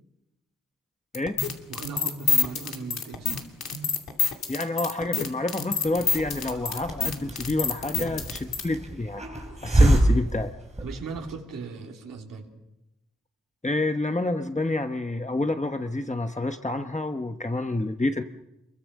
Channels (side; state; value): both; normal; correlation 0.77